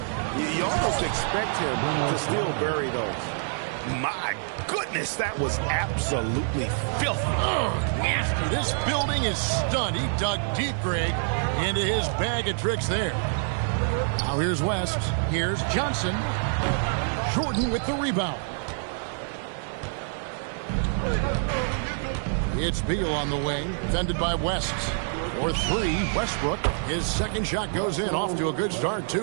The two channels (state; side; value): silent; left; 61 dB below the other